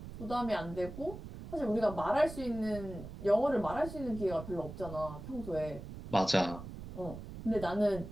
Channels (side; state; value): right; noise; rumble, 11 dB below the sound